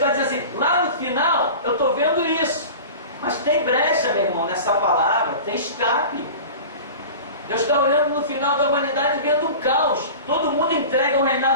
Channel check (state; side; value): inverted; both; correlation -0.35